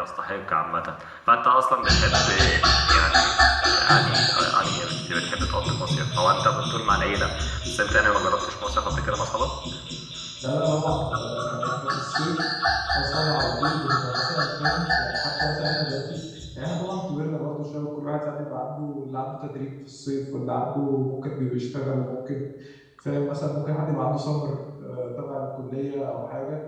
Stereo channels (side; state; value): both; identical; correlation 1.00